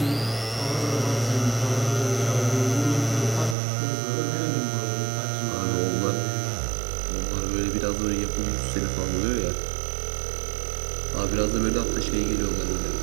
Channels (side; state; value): left; drops out; at 3.6 s